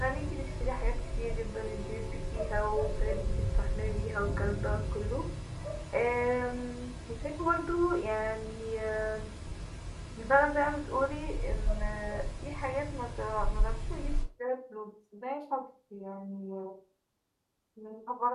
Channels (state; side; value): identical; both; correlation 1.00